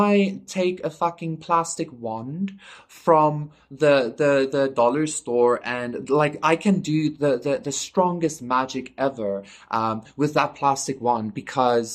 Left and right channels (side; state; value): both; identical; correlation 1.00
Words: take a fucking plastic wand from the dollar store, and like I can do the strongest magic ever with that plastic wand,